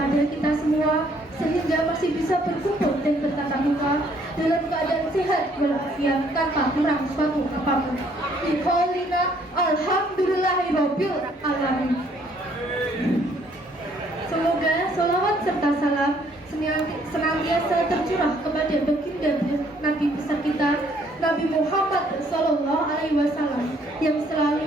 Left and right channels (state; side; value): normal; both; correlation 0.64